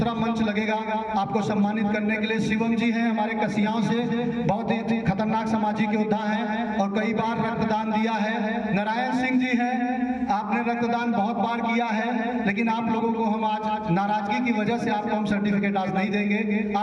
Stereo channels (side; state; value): both; identical; correlation 1.00